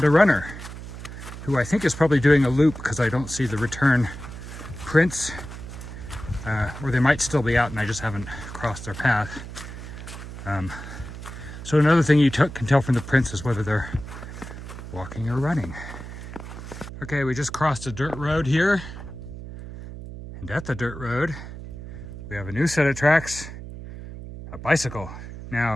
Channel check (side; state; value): right; noise; hum, 11 dB below the sound